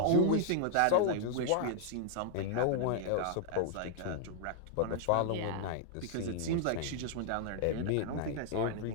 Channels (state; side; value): different; both; correlation 0.00